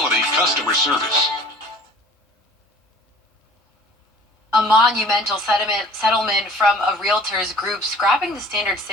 customer service. A monumental settlement from a realtors group scrapping the standard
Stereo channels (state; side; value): normal; both; correlation 0.48